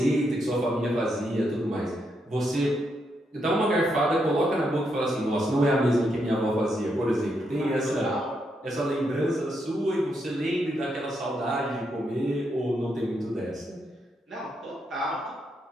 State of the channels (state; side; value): normal; both; correlation 0.80